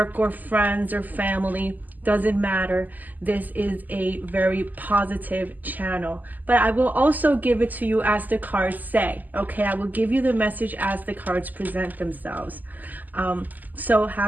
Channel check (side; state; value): left; late; 0.083 ms